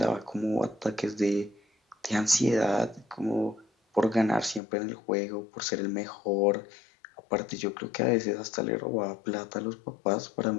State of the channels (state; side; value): drops out; right; at 4.6 s